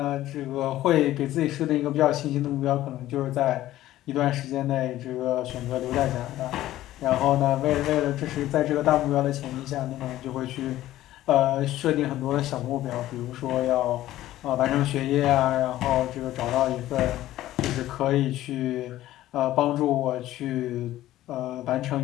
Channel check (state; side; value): quieter; right; 14.5 dB